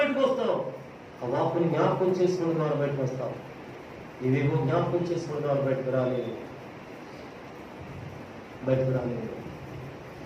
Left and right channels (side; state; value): both; identical; correlation 1.00